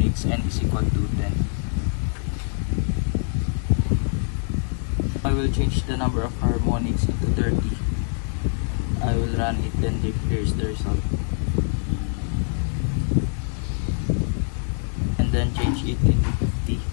n is equal to 10. I will change the number of harmonics to 30. I will run it, then here's the result. And then change it into 50.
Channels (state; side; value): silent; right; 62 dB below the other